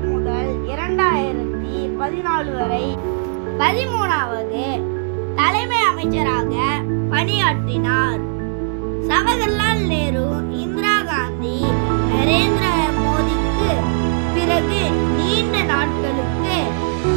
முதல் 2014 வரை 13வது தலைமை அமைச்சராக பணியாற்றினார். ஜவஹர்லால் நேரு, இந்திரா காந்தி, நரேந்திர மோடிக்கு பிறகு நீண்ட நாட்களுக்கு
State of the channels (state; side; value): silent; left; 64 dB below the other